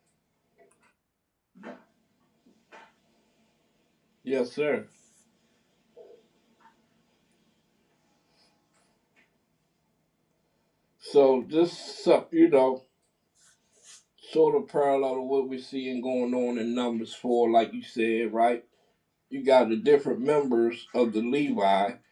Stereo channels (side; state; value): both; identical; correlation 1.00